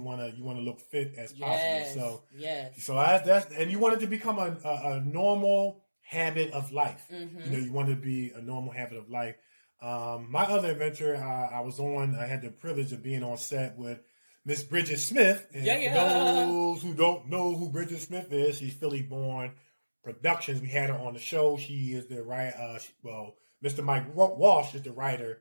want to look fit as possible. So that's and you want it to become a normal habit of life. You want to be a normal habit of life. My other adventure, I had the privilege of being on set with Miss Bridget Smith. And for those who don't know who Bridget Smith is, she's Philly born Productions. We had her on the show. She is the writer. Mr. Mike Walsh is the writer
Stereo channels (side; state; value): both; inverted; correlation -1.00